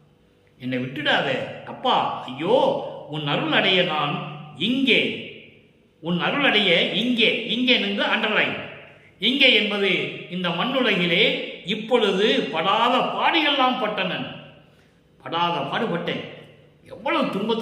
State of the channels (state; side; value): identical; both; correlation 1.00